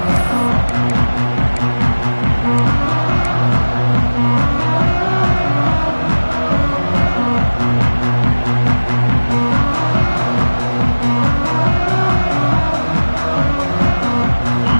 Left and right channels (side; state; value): both; inverted; correlation -1.00